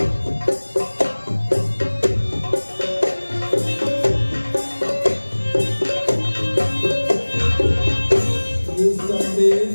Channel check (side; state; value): both; inverted; correlation -1.00